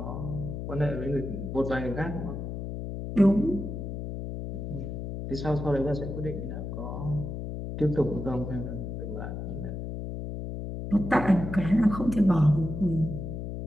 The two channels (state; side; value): noise; left; hum, 6 dB below the sound